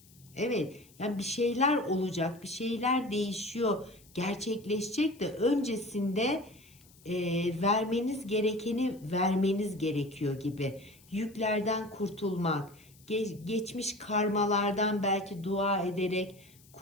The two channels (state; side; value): noise; left; hiss, 26 dB below the sound